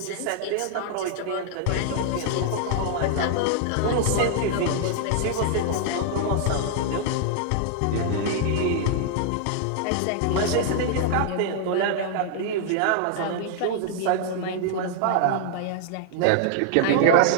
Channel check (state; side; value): different; both; correlation -0.01